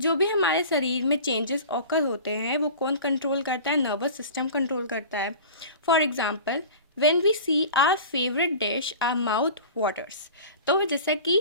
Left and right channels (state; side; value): inverted; both; correlation -0.38